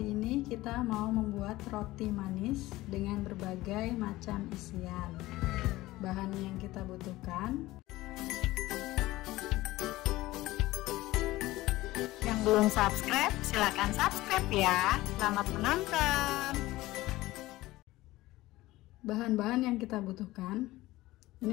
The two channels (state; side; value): quieter; right; 17.9 dB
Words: ini kita mau membuat roti manis dengan berbagai macam isian. Bahan yang kita butuhkan. Yang belum subscribe, silakan subscribe ya. Selamat menonton. Bahan-bahan yang kita butuhkan.